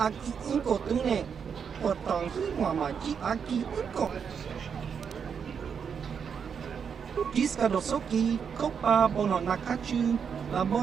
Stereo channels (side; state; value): left; quieter; 6.8 dB